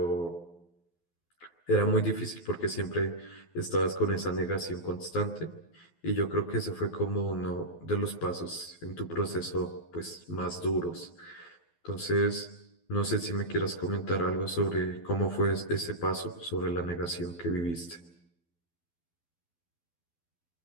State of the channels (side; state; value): right; late; 12 ms